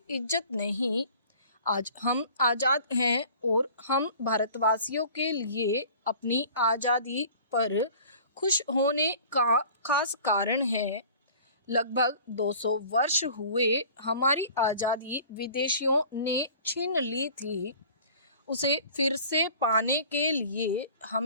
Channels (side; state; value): both; inverted; correlation -0.46